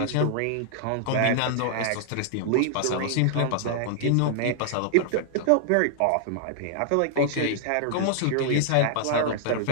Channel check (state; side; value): different; both; correlation -0.01